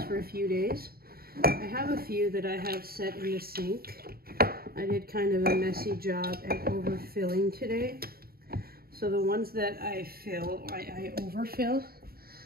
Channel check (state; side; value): late; left; 0.44 ms